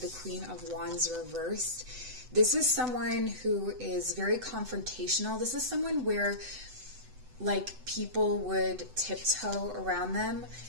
Queen of Wands reversed. This is someone who is very confrontational. This is someone where, like, people would tiptoe around them.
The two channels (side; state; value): left; late; 7.9 ms